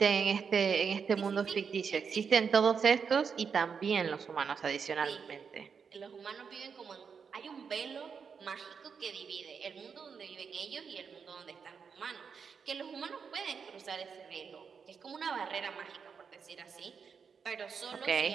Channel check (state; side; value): quieter; left; 6.2 dB